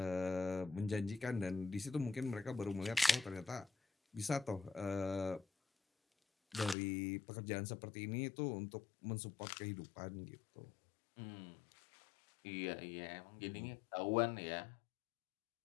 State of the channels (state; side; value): drops out; right; at 6.8 s